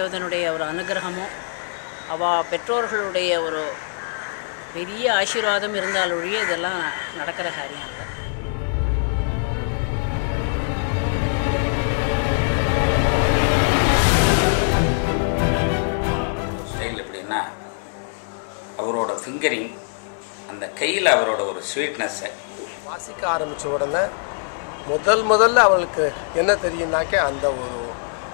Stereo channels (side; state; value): right; silent; 64 dB below the other